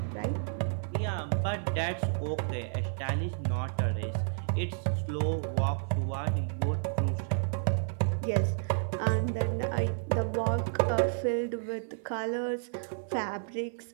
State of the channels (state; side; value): silent; left; 57 dB below the other